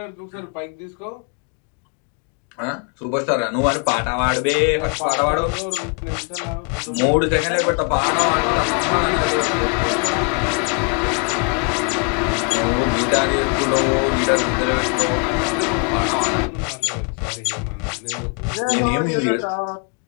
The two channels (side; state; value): right; quieter; 35.3 dB